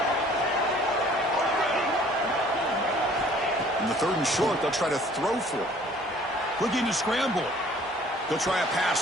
In the third and short, they'll try to throw for it. Looking to scramble. They'll try a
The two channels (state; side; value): normal; both; correlation 0.54